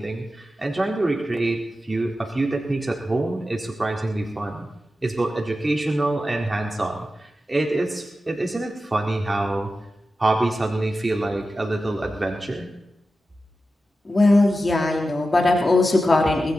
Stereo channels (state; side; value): normal; both; correlation 0.92